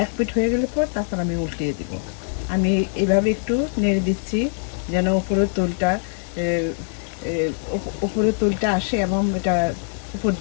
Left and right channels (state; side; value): silent; right; digital silence